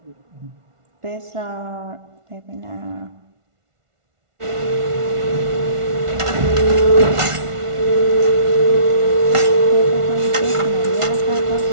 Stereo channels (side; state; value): left; late; 1.4 ms